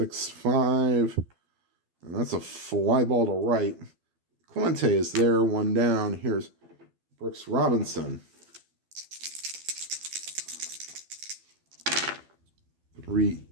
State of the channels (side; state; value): left; late; 12 ms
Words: and that's a fly ball to right. Clemente is there, 1 down. Here's Brooks Robinson.